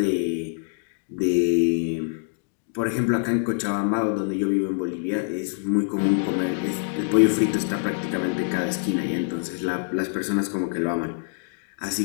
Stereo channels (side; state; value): right; silent; digital silence